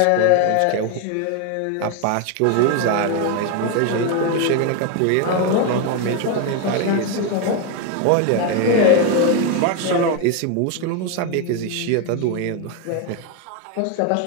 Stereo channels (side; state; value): both; different; correlation 0.01